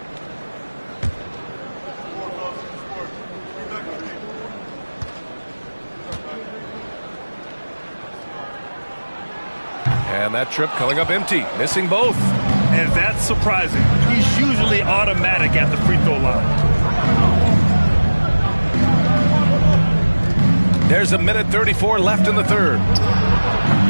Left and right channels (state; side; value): inverted; both; correlation -1.00